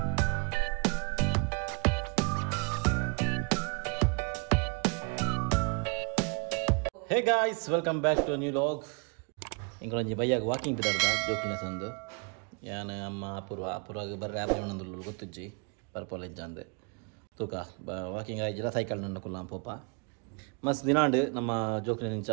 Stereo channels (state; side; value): quieter; left; 34.5 dB